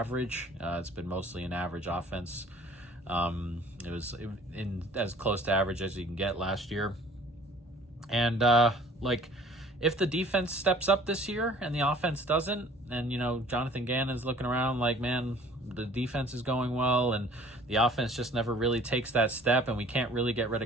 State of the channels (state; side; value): normal; both; correlation 0.51